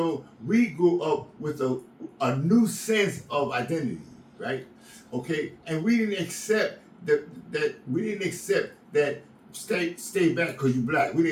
we grew up with a new sense of identity, right? Okay, and we didn't accept that stay back because you're black. We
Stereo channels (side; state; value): both; identical; correlation 1.00